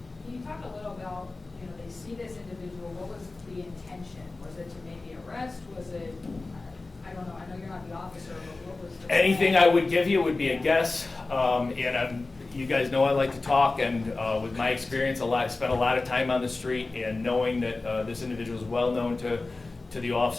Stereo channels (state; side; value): quieter; right; 3.4 dB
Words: Can you talk a little about, they see this individual, what was the intention? Was it to maybe arrest? Was it, I don't know, I know you're not the officer, but what was the Anything plan? I would give you would be a guess. You guys know I like to talk, and with my experience, spent a lot of time on the street, and knowing that this individual is well known to the